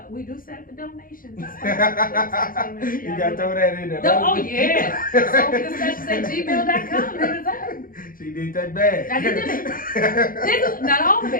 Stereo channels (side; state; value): right; late; 0.41 ms